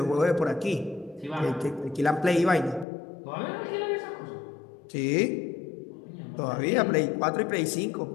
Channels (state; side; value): drops out; right; at 2.9 s